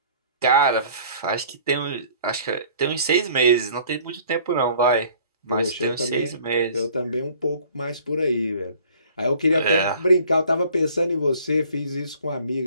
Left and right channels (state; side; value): inverted; both; correlation -0.52